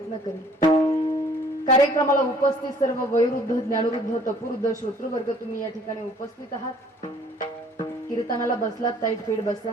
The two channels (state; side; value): normal; both; correlation 0.56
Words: करेन. कार्यक्रमाला उपस्थित सर्व वयोवृद्ध ज्ञानवृद्ध तपवृद्ध श्रोतृवर्ग तुम्ही या ठिकाणी उपस्थित आहात. कीर्तनाला बसलात ताईट फीड